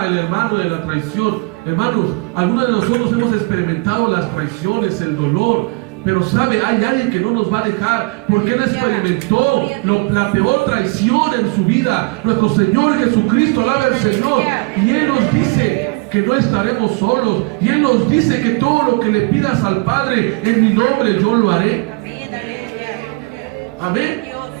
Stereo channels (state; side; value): quieter; left; 27.9 dB